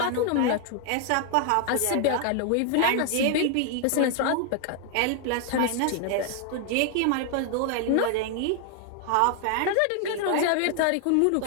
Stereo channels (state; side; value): different; both; correlation 0.00